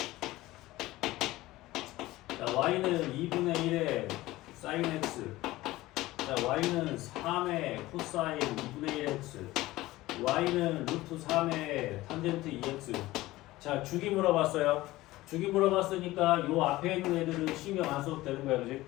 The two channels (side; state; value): right; quieter; 17.8 dB